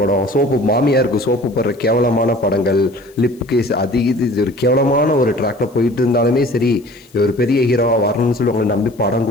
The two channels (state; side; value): noise; left; hiss, 29 dB below the sound